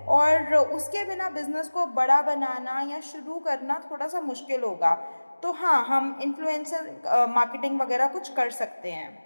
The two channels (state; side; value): inverted; both; correlation -1.00